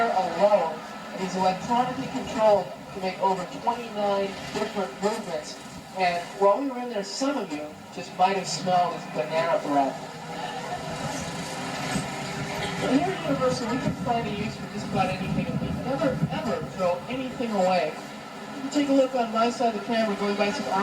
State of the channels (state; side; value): identical; both; correlation 1.00